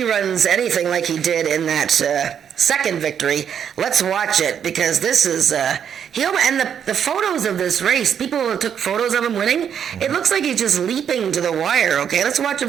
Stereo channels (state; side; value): quieter; left; 8.3 dB